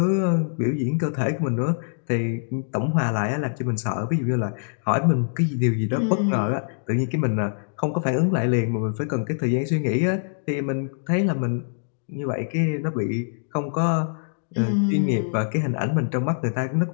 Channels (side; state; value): right; silent; digital silence